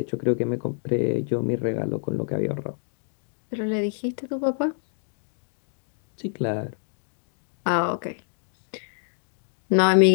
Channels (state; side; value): silent; right; digital silence